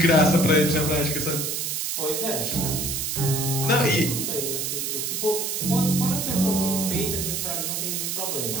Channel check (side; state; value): right; noise; hiss, 1 dB below the sound